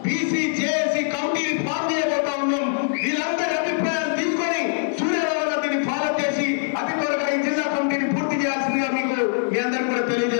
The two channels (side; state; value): right; silent; 59 dB below the other